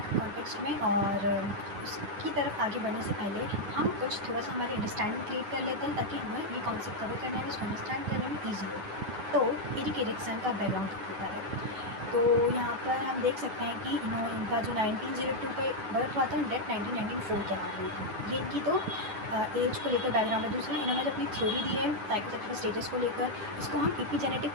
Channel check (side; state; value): left; late; 9.4 ms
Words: कॉन्टेक्स्ट में, और उसकी तरफ आगे बढ़ने से पहले हम कुछ थोड़ा सा हमारी अंडरस्टैंडिंग क्रिएट कर लेते हैं ताकि हमें ये कॉन्सेप्ट कवर करने में, इसको अंडरस्टैंड करने में ईजी हो। तो एरिक एरिक्सन का बैकग्राउंड होता है, तो यहाँ पर हम देख सकते हैं कि इनका जो 1902 पे बर्थ हुआ था, डेथ 1994 के बाद हुई थी। ये इनकी तो एज को लेकर बैकग्राउंड है। दूसरा, इन्होंने जो अपनी थ्योरी दी है साइकोसेक्सुअल स्टेजेस को लेकर, इसको हम एपिजेनेटिक